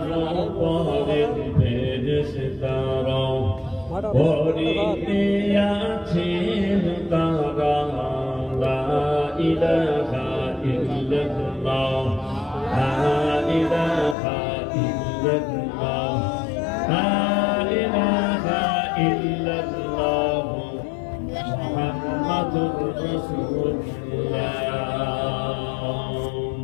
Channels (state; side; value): drops out; right; at 14.2 s